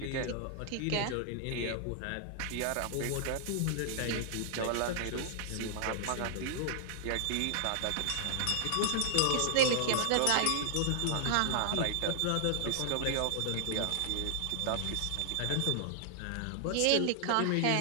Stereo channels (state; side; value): different; both; correlation 0.00